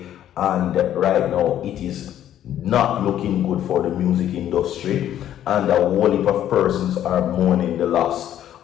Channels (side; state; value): right; quieter; 11.3 dB